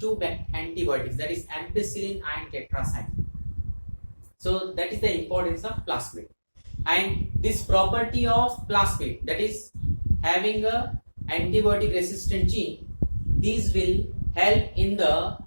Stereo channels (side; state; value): both; inverted; correlation -1.00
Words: antibiotics, that is ampicillin and tetracycline. So that is the importance of plasmid. And this property of plasmid, that is having a antibiotic resistant gene, these will help in the